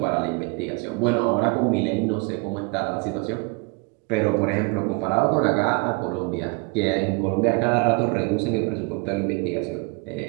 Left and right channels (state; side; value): quieter; left; 30.3 dB